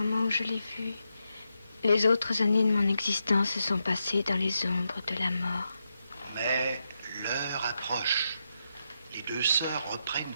où je l'ai vu. Les autres années de mon existence se sont passées dans les ombres de la mort. Mais l'heure approche. Les 2 sœurs reprennent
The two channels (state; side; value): inverted; both; correlation -0.85